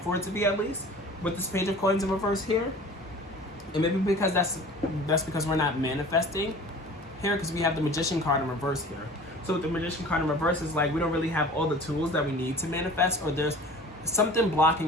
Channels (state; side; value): normal; both; correlation 0.43